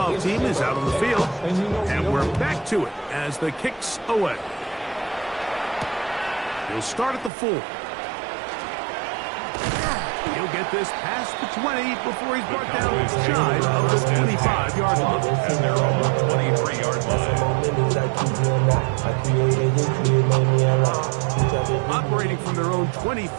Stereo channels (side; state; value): left; drops out; at 7.3 s